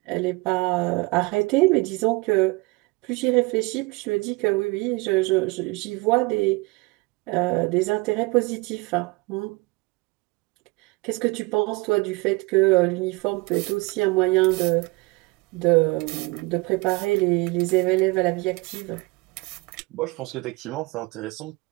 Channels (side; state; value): left; quieter; 24.9 dB